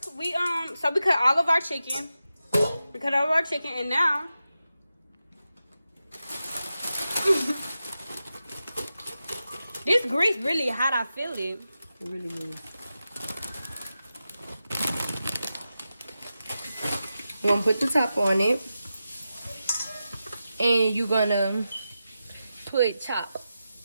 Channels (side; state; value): both; inverted; correlation -0.91